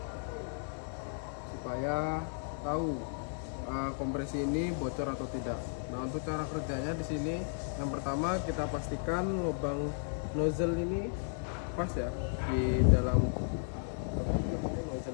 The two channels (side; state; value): right; silent; digital silence